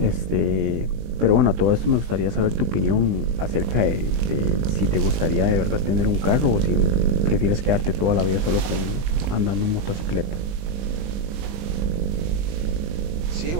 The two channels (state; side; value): late; left; 20 ms